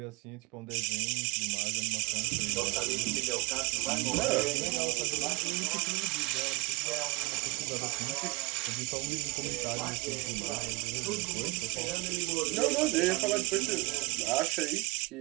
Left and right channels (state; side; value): quieter; left; 24.7 dB